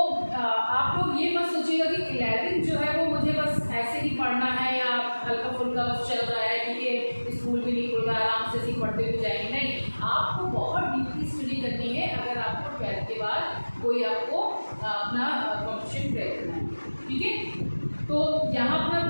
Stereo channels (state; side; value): inverted; both; correlation -1.00